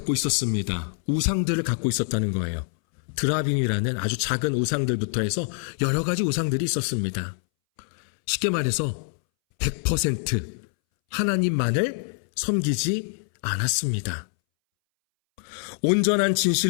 있었습니다. 우상들을 갖고 있었다는 거예요. 드라빔이라는 아주 작은 우상들부터 해서 여러 가지 우상들이 있었습니다. 쉽게 말해서 100% 하나님만을 섬기지 않았습니다. 온전한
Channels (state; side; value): silent; right; 62 dB below the other